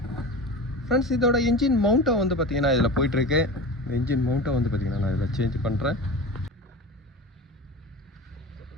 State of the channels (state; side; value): normal; both; correlation 0.31